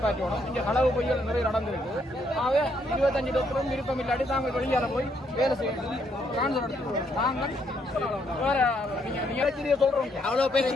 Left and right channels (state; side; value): normal; both; correlation 0.73